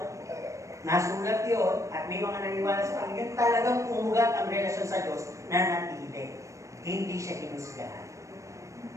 nasulat yun at may mga naniwala sa Panginoon, talagang umugat ang relasyon sa Diyos na natili. Hindi siya hinusgahan.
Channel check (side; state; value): left; late; 0.15 ms